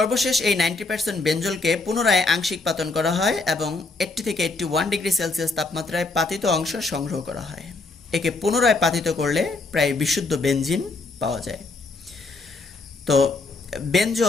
এই 90% বেনজলকে পুনরায় আংশিক পাতন করা হয় এবং 80 থেকে 81 ডিগ্রি সেলসিয়াস তাপমাত্রায় পাতিত অংশ সংগ্রহ করা হয়। একে পুনরায় পাতিত করলে প্রায় বিশুদ্ধ বেনজিন পাওয়া যায়। তো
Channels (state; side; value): quieter; right; 3.5 dB